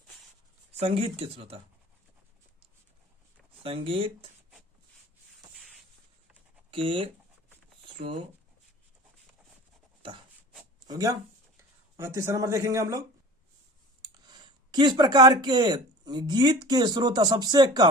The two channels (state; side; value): normal; both; correlation 0.40